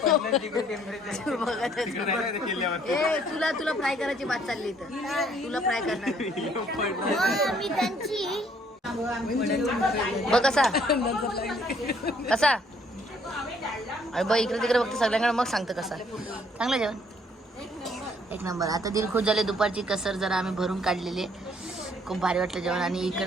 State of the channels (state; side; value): normal; both; correlation 0.64